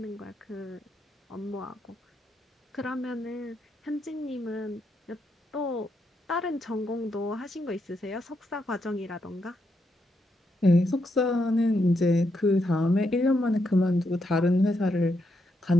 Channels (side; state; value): both; normal; correlation 0.80